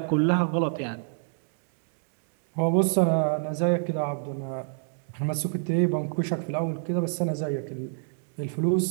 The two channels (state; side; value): silent; left; digital silence